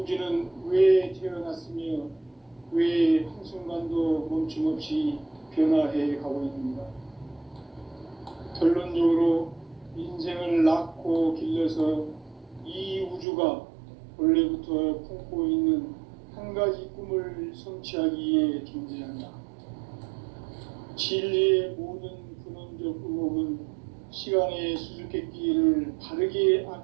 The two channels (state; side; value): drops out; left; at 13.2 s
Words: 왜 태어났으며 왜 한순간도 멈춤없이 변화해 가고 있는가? 결론적으로 인생을 낳고 길러서 이 우주가 원래부터 품고 있는 한 가지 꿈을 성취하기 위해 존재한다. 진리의 모든 근원적 의혹은 시간의 수수께끼를 바르게